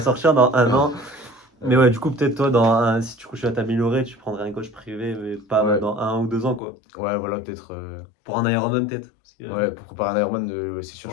dans un an. Mais Euh, ouais, du coup, peut-être toi, si tu continues à t'améliorer, tu prendrais un coach privé, mais pas ouais, dans 1 ou 2 ans, quoi. ouais, voilà, peut-être. Pour un Ironman, peut-être. Ouais, pour préparer un Ironman, ouais, c'est sûr,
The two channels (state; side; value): drops out; right; at 6.6 s